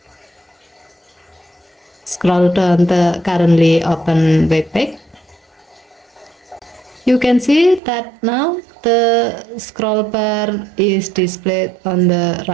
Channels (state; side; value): drops out; left; at 7.8 s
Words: Scroll down the currently open web page. You can see that now the scroll bar is displayed on the